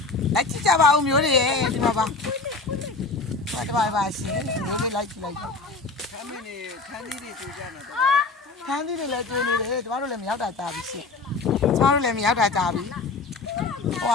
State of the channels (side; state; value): right; quieter; 3.9 dB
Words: လိုက်ကြည့်ကြပါဦးမျိုးတွေဒီမှာပါပါရှင်မျိုးလေးလိုက်ကြည့်လိုက်ခမ်းမင်းနေခမ်းသီးတွေတွေ့ကြတာတော့ခန်းသီးတွေလည်းကျွေးနေတယ်ကျမတို့လည်းမရောက်တာကြာပြီရှင်ကျမတို့လည်းမရောက်တာကြာပြီဟေ